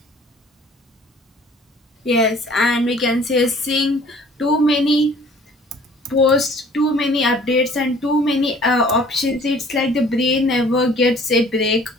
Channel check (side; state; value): both; normal; correlation 0.53